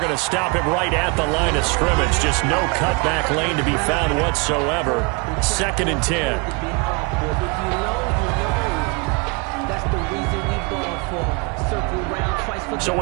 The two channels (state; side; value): quieter; left; 29.8 dB